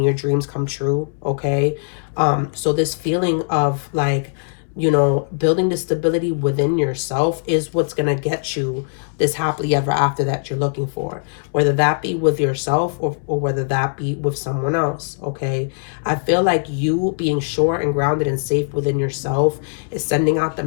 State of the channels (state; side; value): silent; right; 66 dB below the other